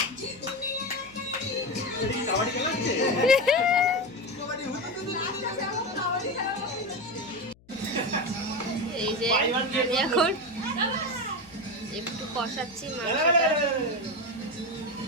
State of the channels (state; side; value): noise; left; hum, 28 dB below the sound